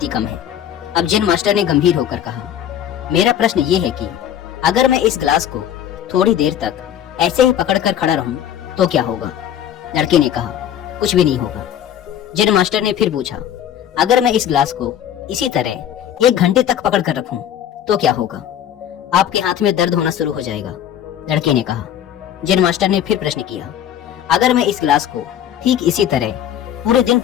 ही कम है। अब जैन मास्टर ने गंभीर होकर कहा, मेरा प्रश्न ये है कि अगर मैं इस गिलास को थोड़ी देर तक ऐसे ही पकड़कर खड़ा रहूं तो क्या होगा? लड़के ने कहा, कुछ भी नहीं होगा। जैन मास्टर ने फिर पूछा, अगर मैं इस गिलास को इसी तरह 1 घंटे तक पकड़ कर रखूं तो क्या होगा? आपके हाथ में दर्द होना शुरू हो जाएगा। लड़के ने कहा। जैन मास्टर ने फिर प्रश्न किया, अगर मैं इस गिलास को ठीक इसी तरह पूरे दिन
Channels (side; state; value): right; quieter; 10.3 dB